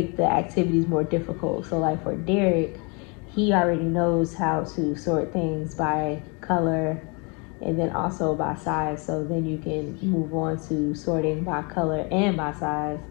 the activities more difficult. So, like for Derek, he already knows how to sort things by color and then also by size. So then you can move on to sorting by color and by size,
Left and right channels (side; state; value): right; quieter; 32.2 dB